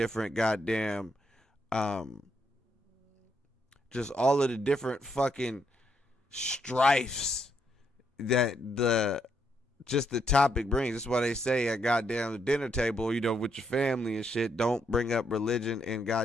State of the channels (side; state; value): both; normal; correlation 0.76